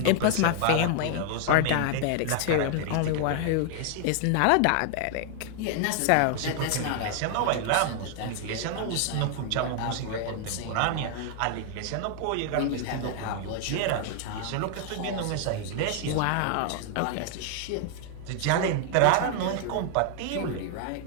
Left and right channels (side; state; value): both; different; correlation 0.00